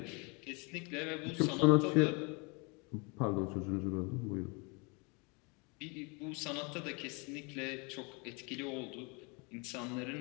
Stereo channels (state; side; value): quieter; right; 31.0 dB